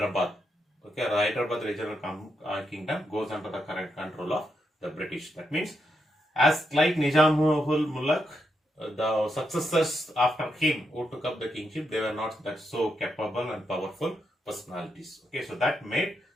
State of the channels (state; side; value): normal; both; correlation 0.82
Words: Okay, the Hyderabad regional kingdom goes under the current control of the British. That means, as like Nizamul Mulak, the successors after him who took up the kingship, they were not that so capable and powerful personalities. Okay, so that made